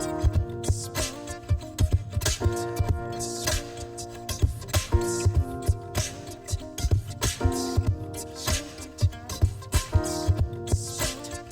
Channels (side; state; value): both; identical; correlation 1.00